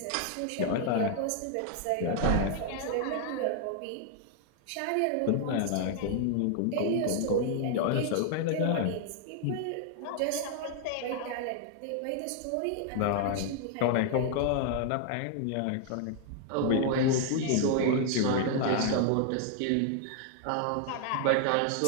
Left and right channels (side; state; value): both; different; correlation 0.00